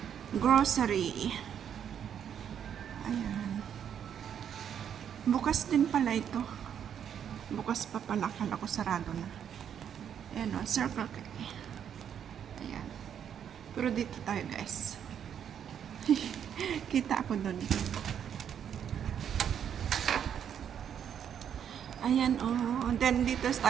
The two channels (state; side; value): quieter; left; 8.7 dB